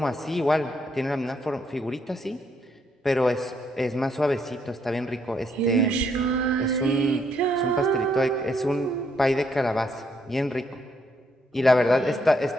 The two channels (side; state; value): both; normal; correlation 0.73